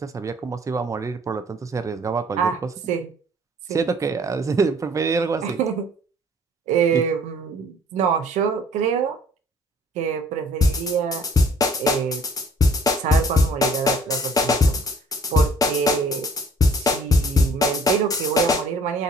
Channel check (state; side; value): normal; both; correlation 0.56